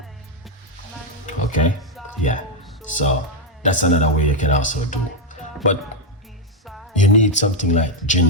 Okay? Yeah. So that's another way you can also do. But you need something like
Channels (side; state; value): both; normal; correlation 0.03